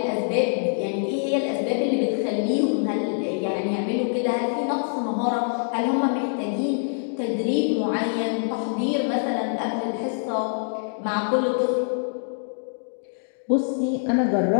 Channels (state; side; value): silent; right; digital silence